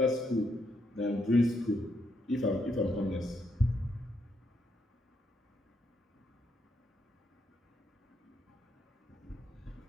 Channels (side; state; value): both; normal; correlation 0.77